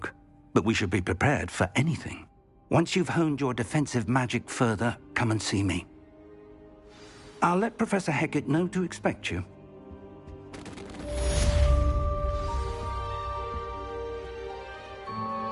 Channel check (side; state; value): both; identical; correlation 1.00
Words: but we should be prepared for anything. Once you've honed your defensive magic further, come and see me. I'll let Professor Hecat know to expect you.